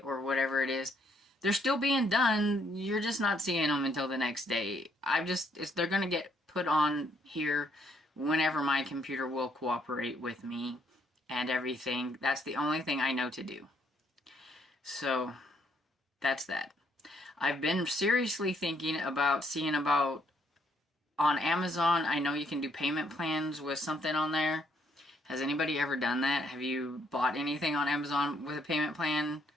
whatever it is, they're still being done. You're just not seeing them until the next day. They're going to get put on here whenever my computer will cooperate with me and everything. That's the only thing I know to do. So that's that. I've been seriously thinking about seeing about on Amazon. I know you can do payment plans with something on there. Has anybody ever done that? Have you bought anything on Amazon with a payment plan?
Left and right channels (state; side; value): normal; both; correlation 0.70